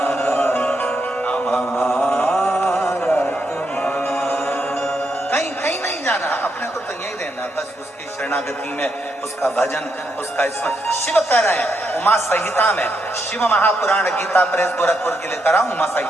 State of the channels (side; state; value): both; normal; correlation 0.79